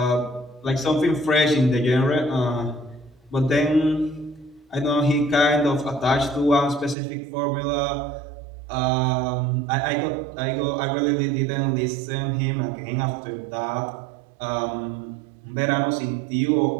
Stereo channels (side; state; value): left; drops out; at 7.0 s